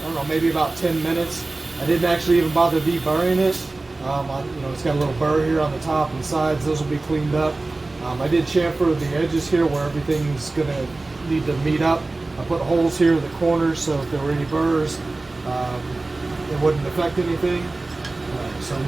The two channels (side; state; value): left; quieter; 3.2 dB